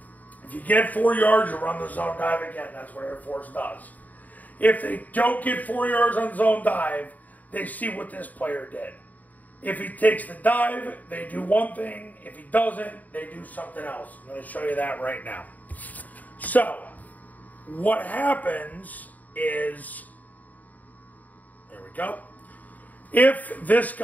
If you get 4 yards, you run the zone dive again. That's what Air Force does. If they don't get 4 yards on zone dive, they see what this player did. If he takes the dive, they do one thing. If he doesn't, they do something else. I'm going to show you that right now. So, what happens is, there we go. If this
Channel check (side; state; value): right; late; 0.077 ms